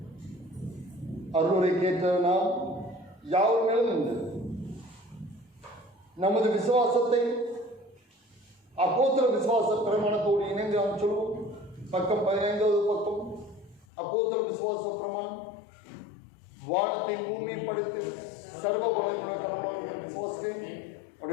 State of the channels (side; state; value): right; drops out; at 13.9 s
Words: அருளுரை கேட்ட நாம் யாவர் மேலும் உண்டு. நமது விசுவாசத்தை அப்போஸ்தலர் விசுவாச பிரமாணத்தோடு இணைந்து நாம் சொல்வோம். பக்கம் 15வது பக்கம். அப்போஸ்தலர் விசுவாச பிரமாணம். வானத்தை பூமியை படைத்து சர்வ வல்லமையுள்ள கடவுளாகிய விசுவாசிக்கிறேன்.